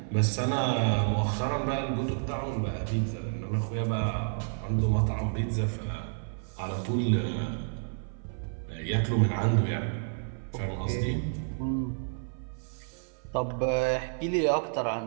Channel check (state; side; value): silent; left; 55 dB below the other